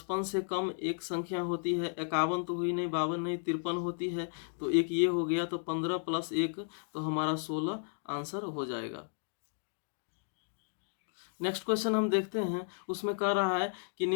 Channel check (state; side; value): silent; right; digital silence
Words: से कम एक संख्या होती है, 51 तो हुई नहीं, 52 नहीं, 53 होती है। तो एक ये हो गया, तो 15 + 1 तो हमारा 16 आंसर हो जाएगा। नेक्स्ट क्वेश्चन हम देखते हैं। उसमें कह रहा है कि